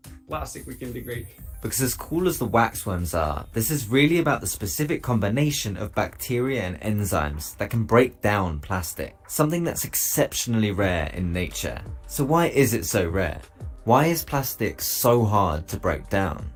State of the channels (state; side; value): identical; both; correlation 1.00